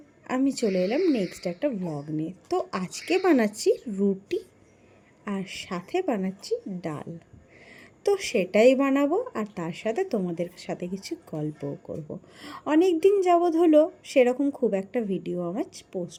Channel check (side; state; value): both; identical; correlation 1.00